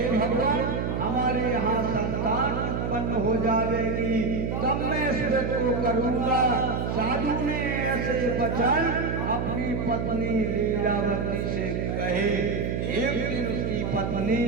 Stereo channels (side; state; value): right; noise; hum, 1 dB below the sound